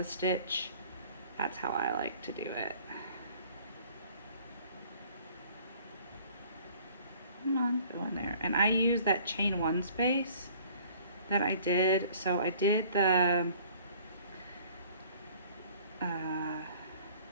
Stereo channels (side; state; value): both; inverted; correlation -0.53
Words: stitch, that's how I like to do it. Come on, go in there. And I use that chain 1 space that I did. So I did the